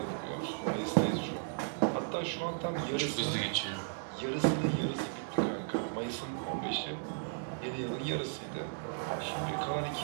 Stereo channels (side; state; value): left; silent; digital silence